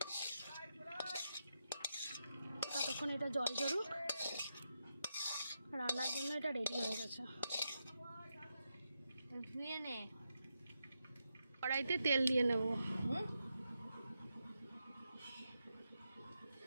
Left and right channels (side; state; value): both; inverted; correlation -0.86